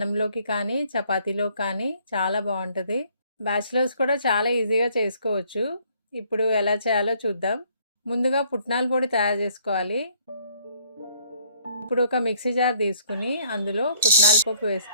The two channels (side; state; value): both; inverted; correlation -0.63